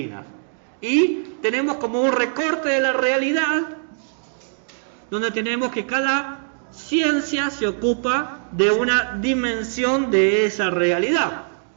Y tenemos como un recorte de la realidad, donde tenemos que cada ciencia se ocupa de una dimensión de esa realidad.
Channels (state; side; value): silent; left; 64 dB below the other